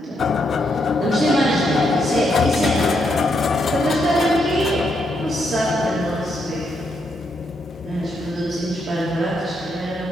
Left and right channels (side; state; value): both; normal; correlation 0.78